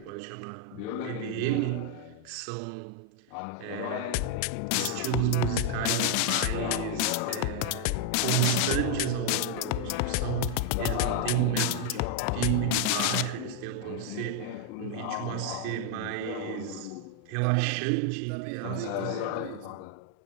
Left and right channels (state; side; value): different; both; correlation 0.00